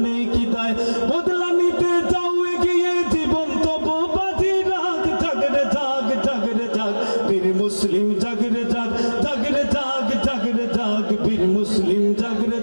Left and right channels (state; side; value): inverted; both; correlation -1.00